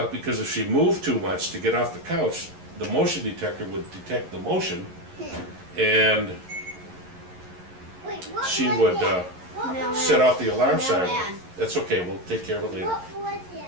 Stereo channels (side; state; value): left; late; 11 ms